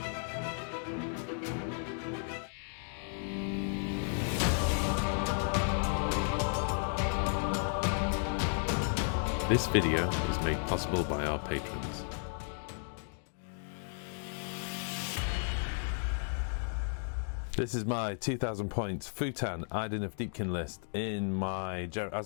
video is made possible by our patrons. This is my 2000 points Futan Idoneth Deepkin list.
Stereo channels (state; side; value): silent; right; 55 dB below the other